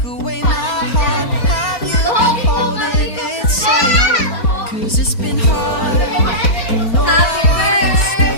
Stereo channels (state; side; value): late; right; 4.4 ms